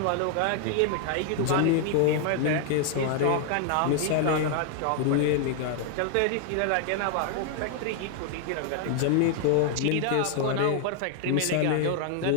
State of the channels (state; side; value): different; both; correlation 0.00